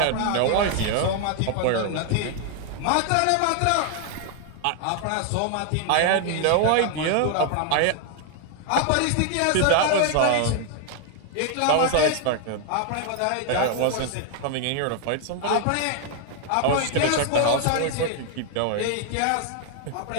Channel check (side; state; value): both; different; correlation 0.00